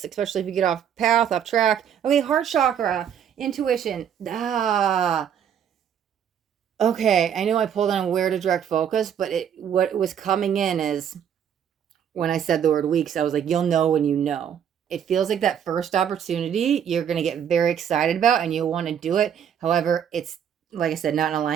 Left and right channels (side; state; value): left; quieter; 8.8 dB